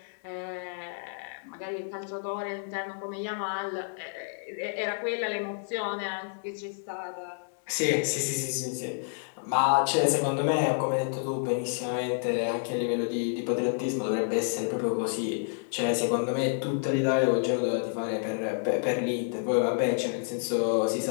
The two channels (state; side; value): silent; right; 58 dB below the other